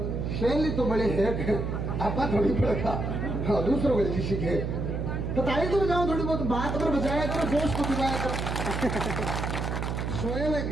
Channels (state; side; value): noise; right; hum, 2 dB below the sound